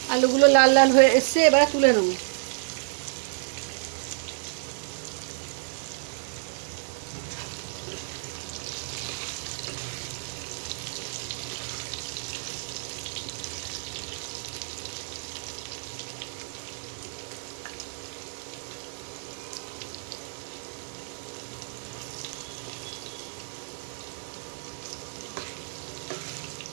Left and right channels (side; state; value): left; silent; 58 dB below the other